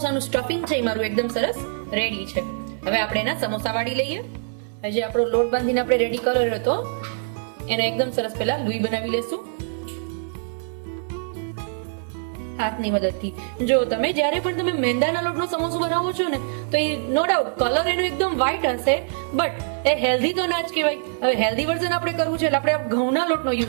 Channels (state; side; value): silent; left; digital silence